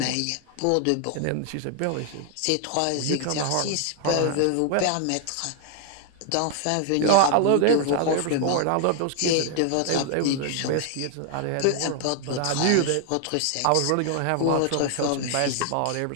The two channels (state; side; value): different; both; correlation 0.00